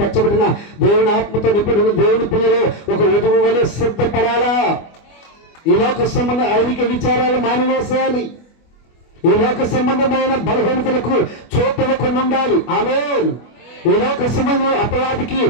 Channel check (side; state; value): right; late; 24 ms